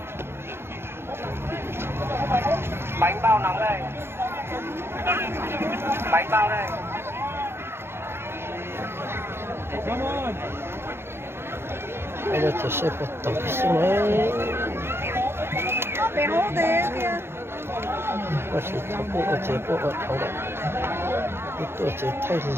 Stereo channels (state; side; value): late; left; 0.12 ms